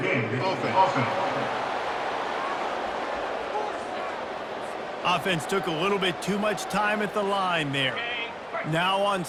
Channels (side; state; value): both; identical; correlation 1.00